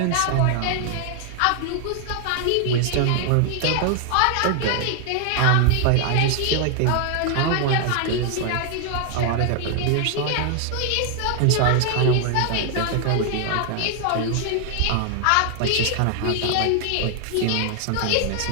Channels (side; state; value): both; different; correlation 0.00